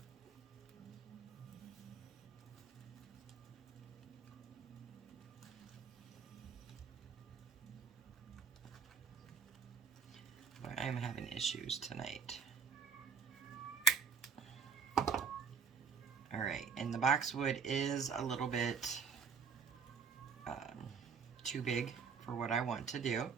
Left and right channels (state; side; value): quieter; left; 6.0 dB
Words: I'm having issues tonight. Alright, and the boxwood is a little bit too big for what I want to do.